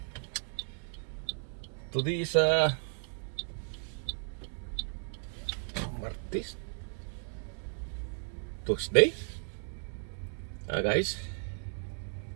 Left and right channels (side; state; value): left; silent; 55 dB below the other